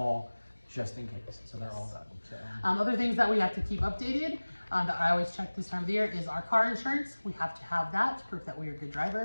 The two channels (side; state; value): both; inverted; correlation -1.00